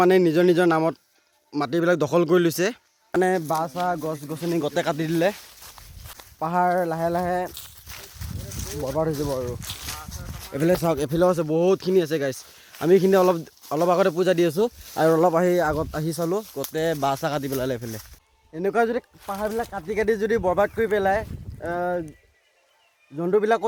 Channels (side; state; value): both; identical; correlation 1.00